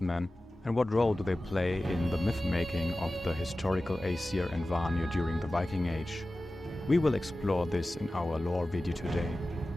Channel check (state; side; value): normal; both; correlation 0.96